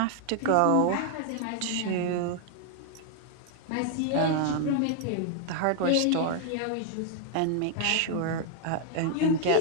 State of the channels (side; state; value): both; different; correlation 0.00